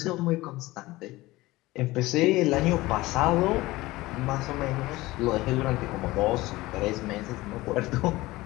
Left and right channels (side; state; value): right; quieter; 19.2 dB